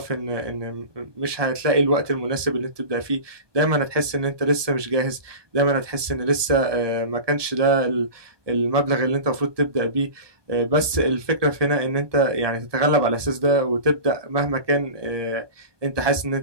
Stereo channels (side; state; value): left; late; 1.2 ms